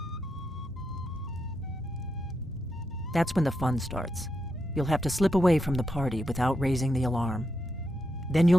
That's when the fun starts. You'll have to slip away from the party without raising the alarm. Then you'll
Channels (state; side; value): normal; both; correlation 0.84